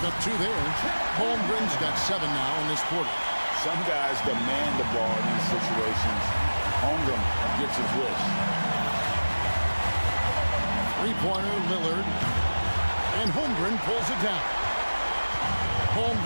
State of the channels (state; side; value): inverted; both; correlation -1.00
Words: up 2 there. Holmgren's got 7 now in this quarter. Some guys demand the ball in these situations. Holmgren gets his wish. Three-pointer, Lillard. And Holmgren pulls it down.